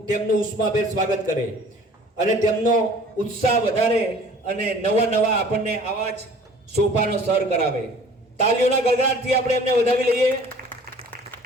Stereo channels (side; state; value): both; normal; correlation 0.50